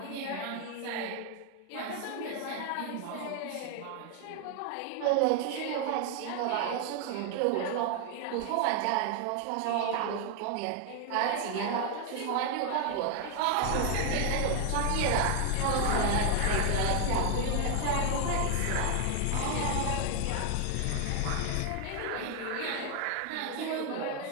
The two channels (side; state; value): both; different; correlation 0.00